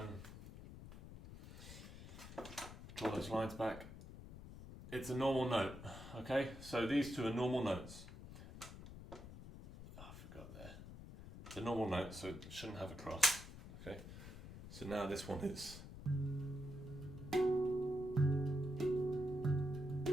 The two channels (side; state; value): left; noise; rumble, 13 dB below the sound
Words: those lines back. It's a normal note, okay? So these two are normal notes. Oh, I forgot there. It's a normal note, so it shouldn't have a cross, okay? So now this one is.